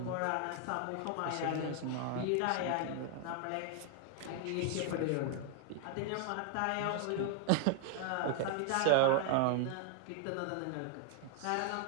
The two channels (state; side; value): different; both; correlation 0.00